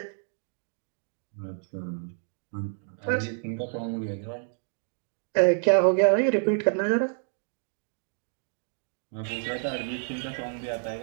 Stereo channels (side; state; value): left; silent; 59 dB below the other